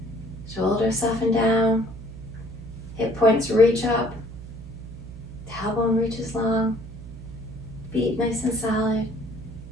Shoulders soften down. Hip points reach up. Tailbone reaches long. Feet nice and solid.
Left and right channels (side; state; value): right; noise; hum, 13 dB below the sound